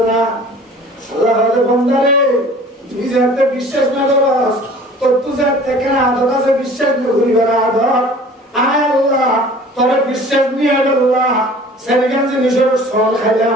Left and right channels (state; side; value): normal; both; correlation 0.47